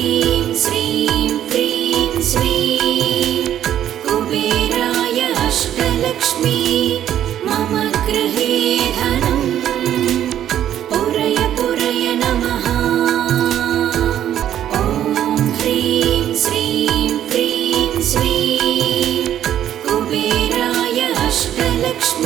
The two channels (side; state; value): left; quieter; 10.9 dB